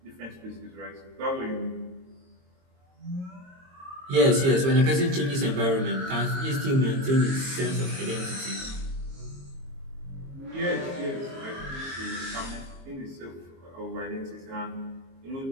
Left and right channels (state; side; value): late; left; 22 ms